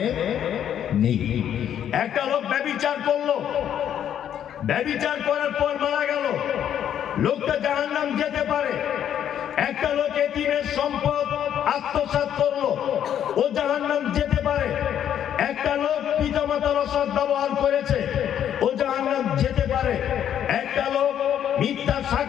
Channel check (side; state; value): right; quieter; 9.8 dB